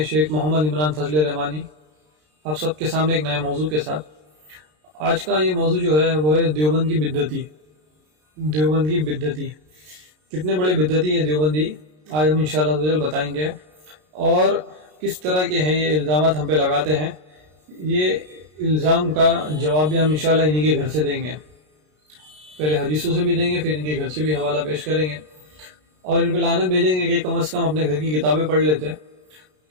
شیخ محمد عمران فضل رحمانی آپ سب کے سامنے ایک نئے موضوع کے ساتھ۔ آج کا یہ موضوع جو ہے وہ ہے دیوبند کی بدعتی۔ دیوبند کی بدعتی کتنے بڑے بدعتی ہے دیوبندی، آج ہم انشاءاللہ بتائیں گے، اور کس طرح کے ہیں یہ الزامات ہم پہ لگاتے ہیں۔ یہ الزام کا جواب بھی ہم انشاءاللہ انہی کے گھر سے دیں گے، پہلے حدیثوں سے بھی دیں گے، پھر ان کے گھر سے بھی حوالہ پیش کریں گے، اور ان پہ لعنت بھیجیں گے کہ کم از کم اپنے گھر کی کتابیں پڑھ لیتے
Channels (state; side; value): late; left; 33 ms